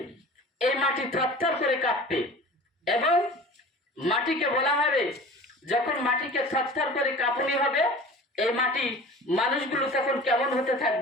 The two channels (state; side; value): normal; both; correlation 0.40